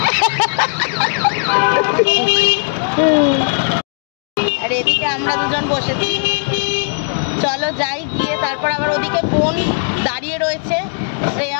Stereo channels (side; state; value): right; silent; digital silence